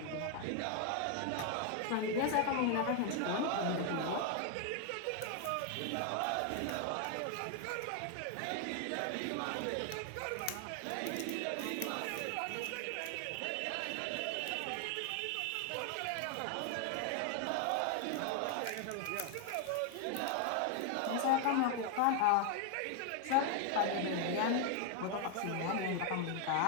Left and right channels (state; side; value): different; both; correlation 0.00